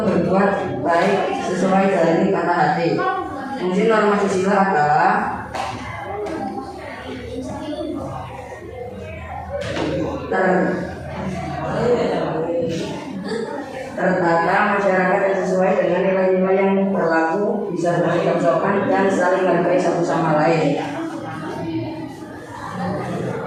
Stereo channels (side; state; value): both; identical; correlation 1.00